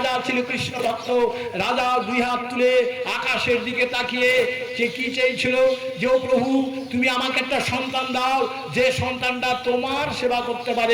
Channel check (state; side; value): identical; both; correlation 1.00